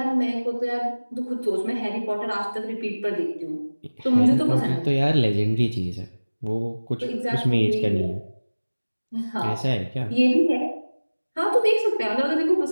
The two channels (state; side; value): inverted; both; correlation -1.00